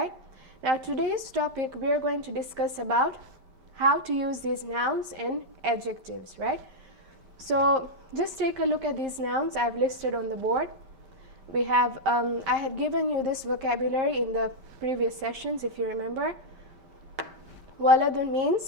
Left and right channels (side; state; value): left; late; 5.1 ms